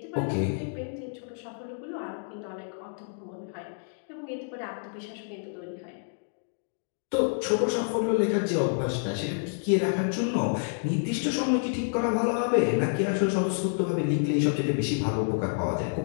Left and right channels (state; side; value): silent; right; digital silence